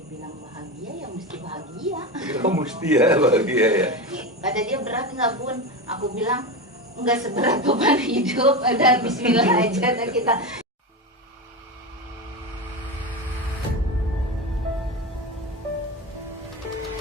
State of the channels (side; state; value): both; normal; correlation 0.20